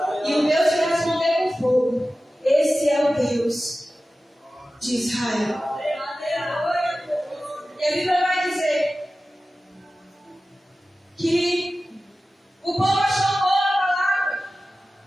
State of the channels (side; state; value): both; normal; correlation 0.95